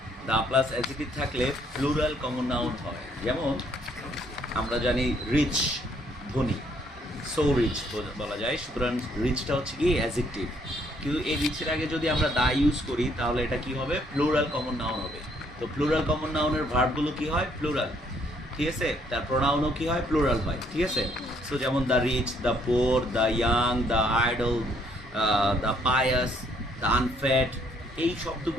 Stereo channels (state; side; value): normal; both; correlation 0.67